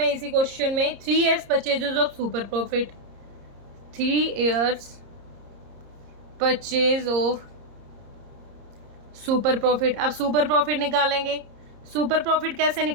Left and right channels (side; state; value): left; late; 30 ms